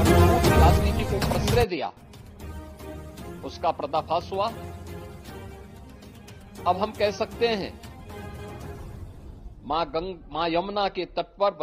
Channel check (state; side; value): identical; both; correlation 1.00